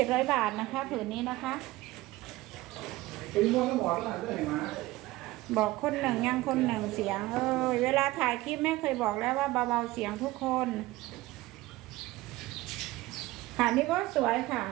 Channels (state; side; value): quieter; left; 18.4 dB